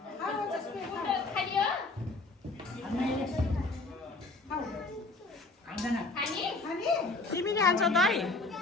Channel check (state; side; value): quieter; right; 3.3 dB